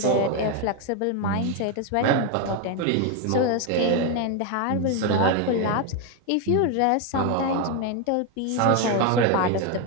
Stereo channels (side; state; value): both; different; correlation 0.02